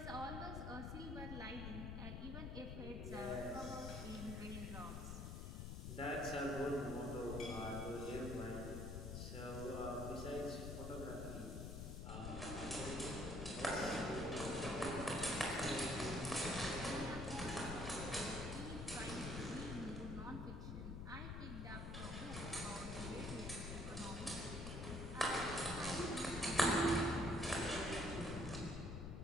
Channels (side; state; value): left; noise; rumble, 5 dB below the sound